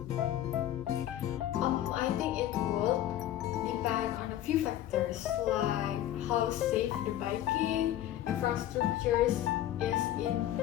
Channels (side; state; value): right; quieter; 12.7 dB